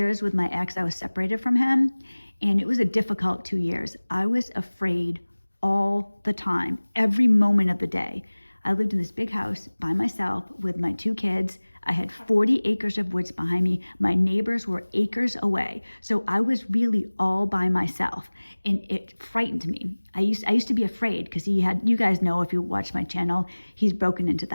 with my ex, I was separated from him, and it was a difficult 2 years. I was afraid all the time, every moment of the day. I lived in this big house by myself with my 2 kids. I had 40 acres of woods behind me. My neighbors were acres away. So I was really all by myself, and it frightened me. I used to be afraid because you guys know if you watch my channel, he's broken into the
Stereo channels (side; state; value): both; inverted; correlation -1.00